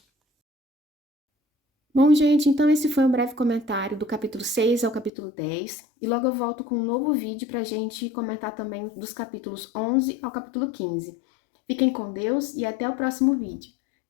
Bom, gente, então esse foi um breve comentário do capítulo 6 ao capítulo 10, e logo eu volto com um novo vídeo para a gente comentar também dos capítulos 11 ao capítulo 15. Fiquem com Deus e até o próximo vídeo.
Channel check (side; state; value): right; drops out; at 5.1 s